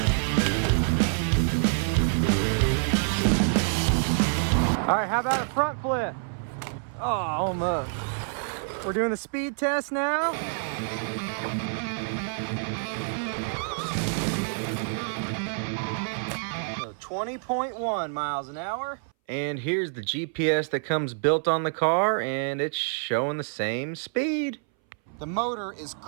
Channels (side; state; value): left; silent; 59 dB below the other